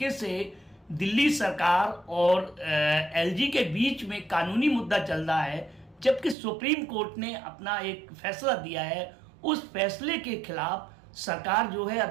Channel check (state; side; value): drops out; left; at 6.4 s